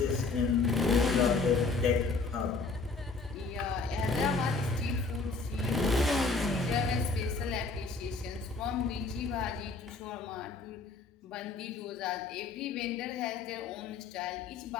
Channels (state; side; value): quieter; right; 4.0 dB